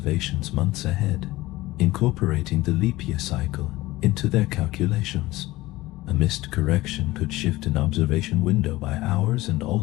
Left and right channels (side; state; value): right; quieter; 18.5 dB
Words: months ahead, incorporating the leap year cycle into their calculations. A missed correction could shift an observation window by hours and